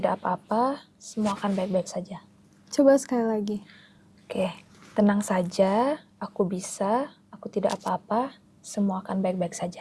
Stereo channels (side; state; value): both; identical; correlation 1.00